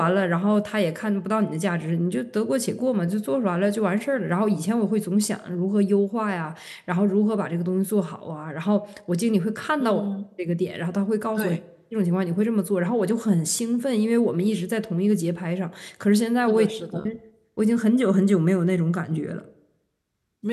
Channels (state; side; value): identical; both; correlation 1.00